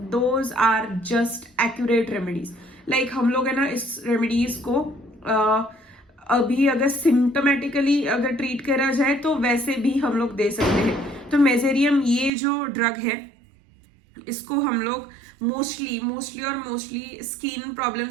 those are just accurate remedies. Like हम लोग है ना इस रेमेडीज को अभी अगर सिम्टोमेटिकली अगर ट्रीट करा जाए तो वैसे भी हम लोग दे सकते हैं। तो मेजेरियम ये जो ड्रग है इसको हम लोग मोस्टली स्किन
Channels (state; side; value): drops out; left; at 12.3 s